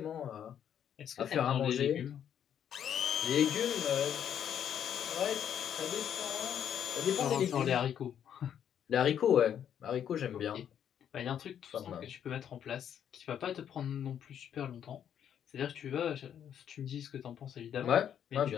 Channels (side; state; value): right; quieter; 9.2 dB